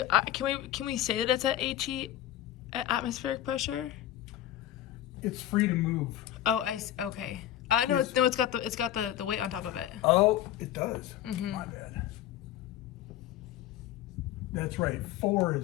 Can we say that it's at HE, at atmospheric pressure? It's free to move. Oh, okay. No, Yes. it's got the weight on top of it. Oh, it does. My bad. That's right. 4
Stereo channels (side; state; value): right; quieter; 12.4 dB